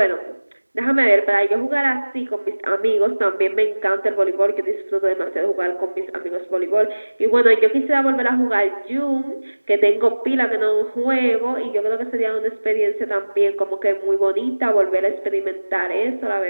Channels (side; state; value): both; inverted; correlation -1.00